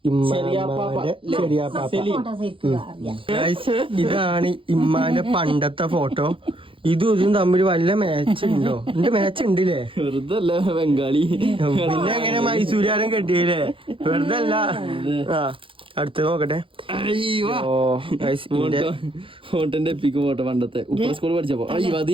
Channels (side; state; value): left; late; 0.25 ms